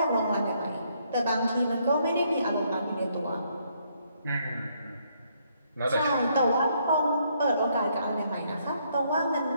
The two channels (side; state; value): both; inverted; correlation -0.71